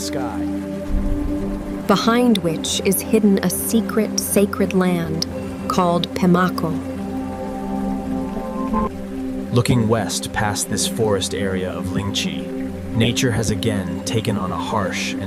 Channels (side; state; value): both; identical; correlation 1.00